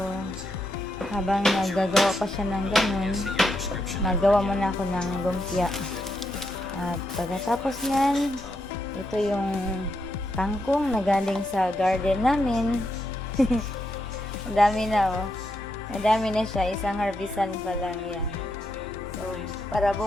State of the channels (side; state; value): both; normal; correlation 0.81